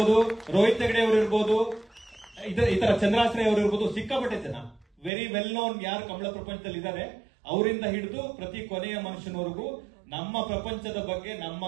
ರೋಹಿತ್ ಹೆಗಡೆ ಅವರು ಇರ್ಬೋದು, ಈ ತರ ಚಂದ್ರಾಶ್ರಯ ಅವರು ಇರ್ಬೋದು. ಸಿಕ್ಕಾಪಟ್ಟೆ ಜನ ವೆರಿ ವೆಲ್ ನೋನ್ ಯಾರು ಕಂಬಳ ಪ್ರಪಂಚದಲ್ಲಿ ಇದ್ದಾರೆ, ಅವರಿಂದ ಹಿಡಿದು ಪ್ರತಿ ಕೊನೆಯ ಮನುಷ್ಯನವರೆಗೂ ನಮ್ಮ ಪ್ರಪಂಚದ ಬಗ್ಗೆ, ನಮ್ಮ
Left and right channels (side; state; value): left; drops out; at 5.1 s